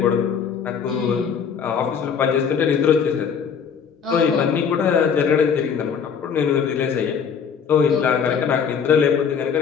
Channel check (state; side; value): quieter; right; 6.9 dB